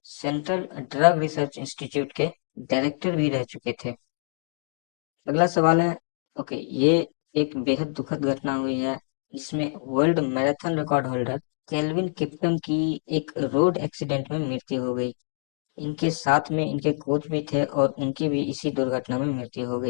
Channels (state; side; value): silent; right; digital silence